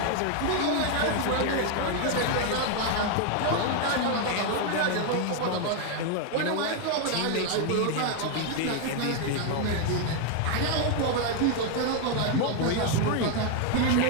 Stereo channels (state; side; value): different; both; correlation 0.01